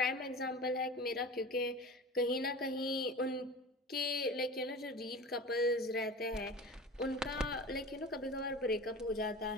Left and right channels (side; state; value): both; normal; correlation 0.35